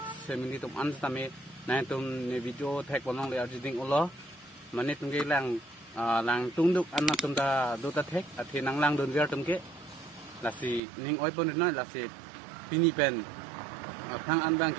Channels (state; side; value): drops out; left; at 10.8 s